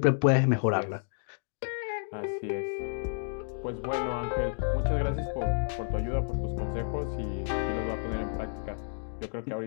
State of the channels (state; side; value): silent; right; digital silence